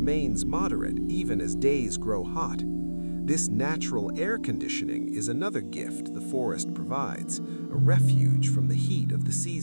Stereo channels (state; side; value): inverted; both; correlation -1.00